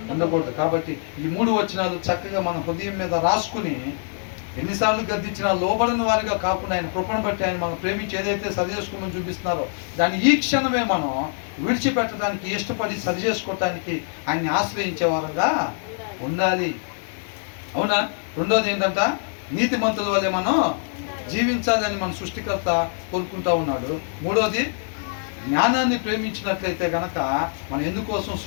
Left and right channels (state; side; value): silent; right; 63 dB below the other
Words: ఉండకూడదు. కాబట్టి ఈ 3 వచనాలు చక్కగా మన హృదయం మీద రాసుకుని ఎన్నిసార్లు గద్దించినా లోబడిన వారిగా కాకుండా ఆయన కృపను బట్టి ఆయన మనం ప్రేమించి ఏదైతే సరి చేసుకోమని చూపిస్తున్నారో దాన్ని ఈ క్షణమే మనం విడిచిపెట్టడానికి ఇష్టపడి సరి చేసుకోవటానికి ఆయన్ని ఆశ్రయించే వారంగా ఉండాలి. అవునా? రెండోది ఏంటంట, నీతిమంతుల వల్లే మనం జీవించాలని మన సృష్టికర్త కోరుకుంటా ఉన్నాడు. మూడోది, జ్ఞానాన్ని ప్రేమించినట్లయితే కనుక మనం ఎందుకోసం